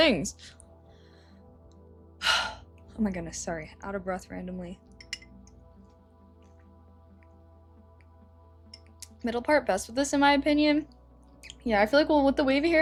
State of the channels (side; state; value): both; identical; correlation 1.00